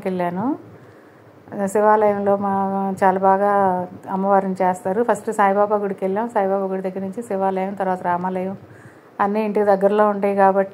వెళ్ళాను. శివాలయంలో చాలా బాగా అమ్మవారిని చేస్తారు. ఫస్ట్ సాయిబాబా గుడికి వెళ్ళాం. సాయిబాబా గుడి దగ్గర నుంచి శివాలయం, తర్వాత రామాలయం అన్నీ ఇంటికి దగ్గరలో ఉంటాయి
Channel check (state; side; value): identical; both; correlation 1.00